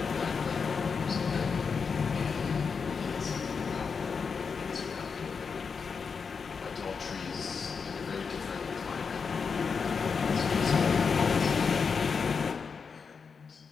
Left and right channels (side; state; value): right; quieter; 5.6 dB